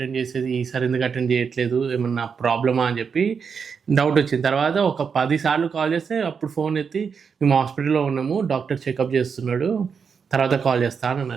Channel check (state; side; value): quieter; left; 6.2 dB